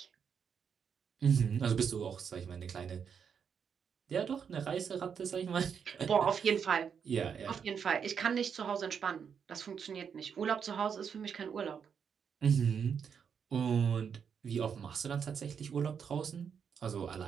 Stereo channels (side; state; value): left; quieter; 7.0 dB